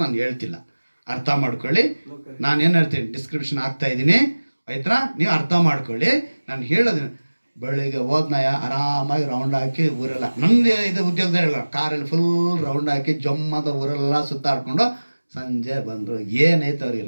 ನಾನು ಹೇಳ್ತಿಲ್ಲ, ಅರ್ಥ ಮಾಡ್ಕೊಳ್ಳಿ. ನಾನೇನು ಹೇಳ್ತೀನಿ ಡಿಸ್ಕ್ರಿಪ್ಷನ್ ಆಗ್ತಾ ಇದ್ದೀನಿ, ಆಯ್ತಾ? ನೀವು ಅರ್ಥ ಮಾಡ್ಕೊಳ್ಳಿ. ನಾನು ಹೇಳೋದು, ಬೆಳಿಗ್ಗೆ ಹೋದ್ನಯ ಆರಾಮಾಗಿ ರೌಂಡ್ ಹಾಕಿ ಊರೆಲ್ಲ, ನಮ್ಮದು ಇದು ಉದ್ಯೋಗದ ಹೇಳ, ಕಾರಲ್ಲಿ ಫುಲ್ ರೌಂಡ್ ಹಾಕಿ ಜಮ್ಮದ ಊರೆಲ್ಲ ಸುತ್ತಾಡ್ಕೊಂಡು ಸಂಜೆ ಬಂದರು. ಏನೈತೆ ಅವ್ರಿಗೆ,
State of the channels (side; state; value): both; inverted; correlation -1.00